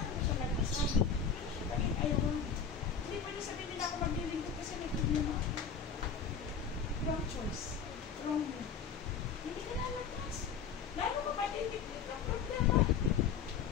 mo siya nagpasan. Hindi mo siya paging ayawan. Hindi pwede sabihin nila ako maglilingkod kasi may problema ako. Wrong choice. Wrong move. Hindi ka lalagpas. Lalo ko pwede hindi ang problema.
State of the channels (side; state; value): right; quieter; 6.6 dB